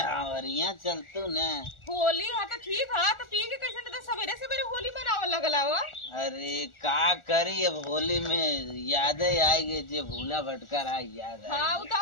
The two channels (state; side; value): late; right; 1.4 ms